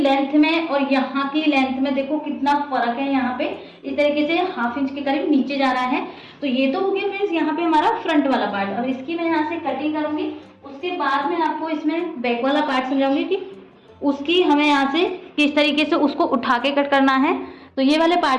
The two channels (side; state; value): both; identical; correlation 1.00